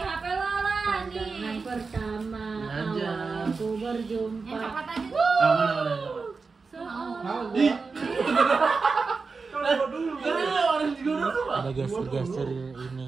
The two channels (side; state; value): left; quieter; 4.5 dB